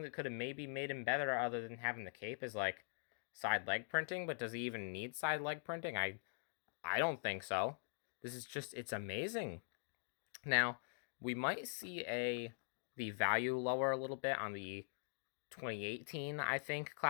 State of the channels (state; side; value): silent; right; digital silence